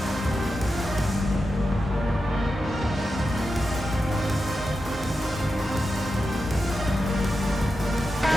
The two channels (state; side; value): normal; both; correlation 0.90